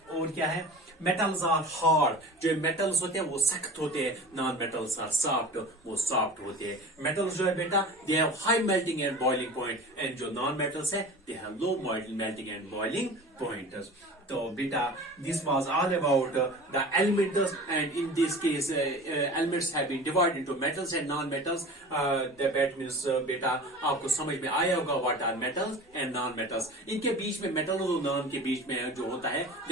और क्या है, मेटल्स आर हार्ड, जो मेटल्स होते हैं वो सख्त होते हैं, नॉन मेटल्स आर सॉफ्ट, वो सॉफ्ट होते हैं। मेटल्स जो है बेटा they have high melting and boiling point, and जो नॉन मेटल्स है they have low melting and boiling point. तो बेटा this was all about the elements, and in this case elements have been divided into metals and non metals. That means बेटा आपको समझ में आया होगा what are metals and non metals. इनके बीच में मेटल और नॉन के बीच में जो होता है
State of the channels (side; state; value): both; normal; correlation 0.37